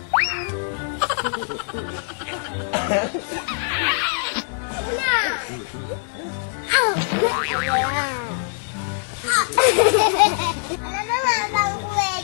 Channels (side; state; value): right; silent; digital silence